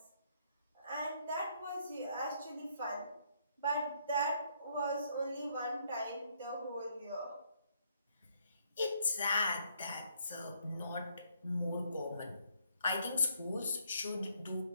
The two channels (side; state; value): both; inverted; correlation -0.70